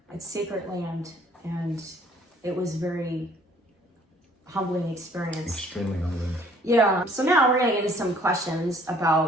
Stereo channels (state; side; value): normal; both; correlation 0.58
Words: it's sacred land, and it was very humbling experience. Extremely humbling. Yeah, so now we're gonna get into some questions